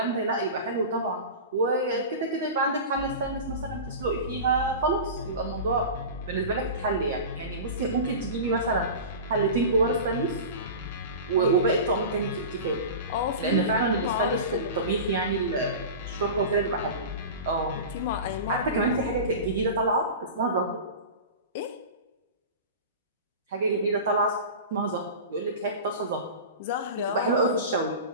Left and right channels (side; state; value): both; inverted; correlation -0.31